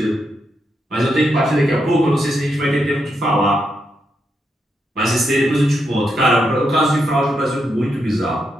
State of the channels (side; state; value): both; normal; correlation 0.82